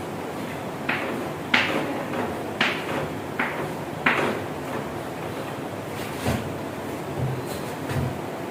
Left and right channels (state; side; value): identical; both; correlation 1.00